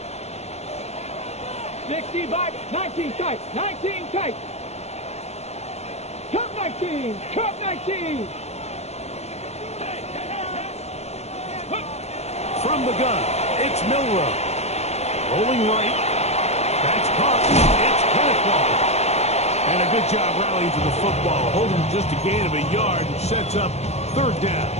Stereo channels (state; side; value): late; right; 0.31 ms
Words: 65, 19 tight, 19 tight. Cup 19, cup 19. From the gun, it's Milrow. Rolling right. That's caught. It's Kenneth Walker. And a good job rallying to the football. Holding just a gain of a yard and sets up 3rd down.